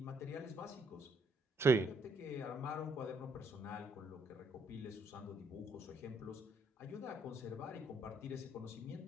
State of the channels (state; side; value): normal; both; correlation 0.71